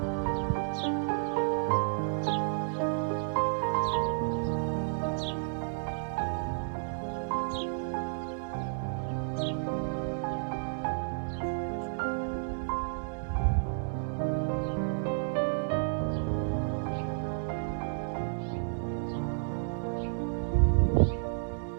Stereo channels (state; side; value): silent; left; digital silence